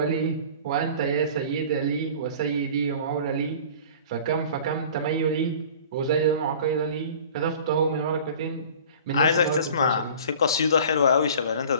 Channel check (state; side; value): inverted; both; correlation -0.44